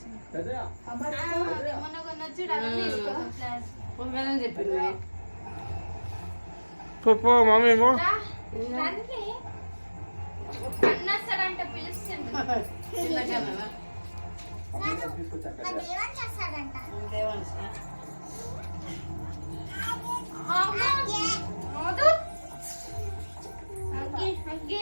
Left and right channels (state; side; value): inverted; both; correlation -1.00